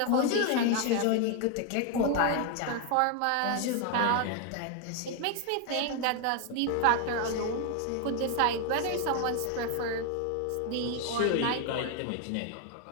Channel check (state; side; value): different; both; correlation 0.01